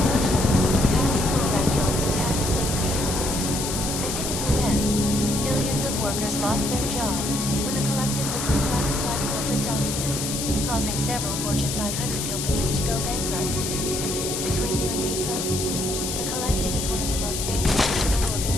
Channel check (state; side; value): noise; left; hiss, 3 dB below the sound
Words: workers lost their jobs when the collective leaked classified corporate documents, causing several Fortune 500 companies to go bankrupt. Between you and me, folks, the collective is one of the most dangerous criminal